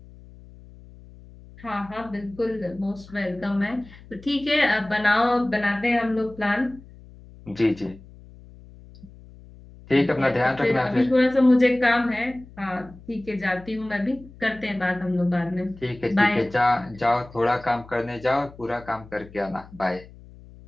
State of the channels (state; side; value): noise; left; hum, 21 dB below the sound